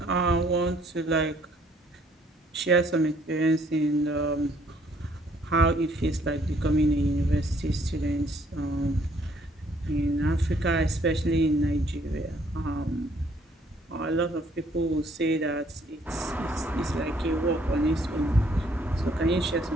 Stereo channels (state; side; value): normal; both; correlation 0.64